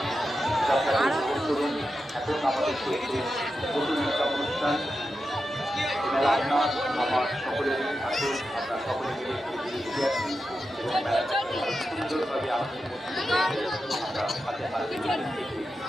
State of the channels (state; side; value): normal; both; correlation 0.90